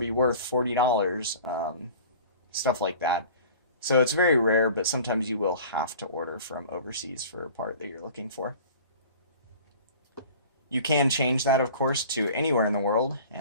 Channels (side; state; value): both; inverted; correlation -0.43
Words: worth $40, stuff like that. So it's very rare, but sometimes you will have to order from overseas for a part that you're looking for. You can change that, of course, to anywhere in the world,